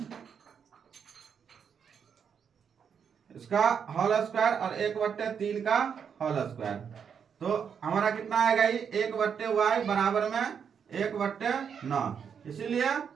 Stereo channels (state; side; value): quieter; left; 7.2 dB